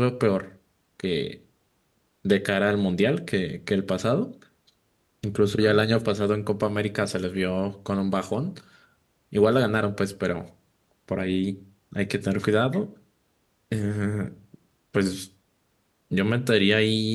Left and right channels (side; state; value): both; identical; correlation 1.00